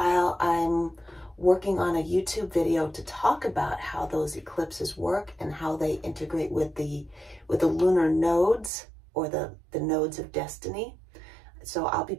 I'm working on a YouTube video to talk about how those eclipses work and how they integrate with the lunar nodes, or the nodes of destiny. So I'll be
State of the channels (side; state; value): left; drops out; at 8.7 s